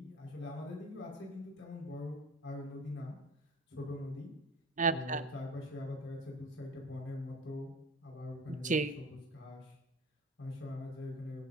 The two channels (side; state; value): both; normal; correlation 0.35